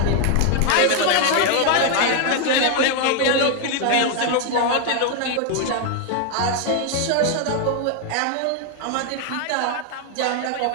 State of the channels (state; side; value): different; both; correlation 0.00